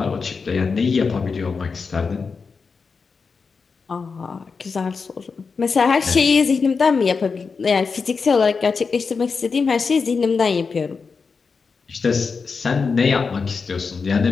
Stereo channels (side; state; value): right; quieter; 5.0 dB